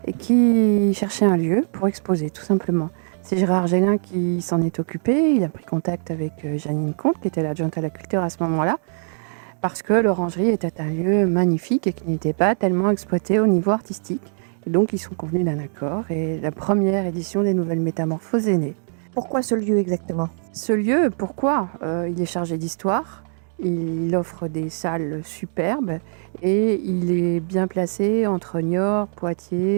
et qui cherchait un lieu pour exposer, tout simplement. C'est Gérard Gélin qui s'en est occupé. Il a pris contact avec Janine Comte, qui était l'adjointe à la culture à ce moment-là, parce que l'Orangerie était un lieu magnifique et qui n'était pas tellement exploité au niveau artistique. Et donc, ils sont convenus d'un accord et la première édition des Nouvelles Métamorphoses est née. Pourquoi ce lieu exactement? Ce lieu, pourquoi? Il est chargé d'histoire, il offre des salles superbes et il est bien placé entre Niort,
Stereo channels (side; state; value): left; silent; digital silence